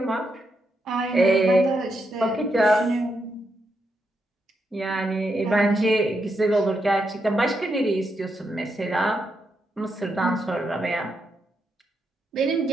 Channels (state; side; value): normal; both; correlation 0.82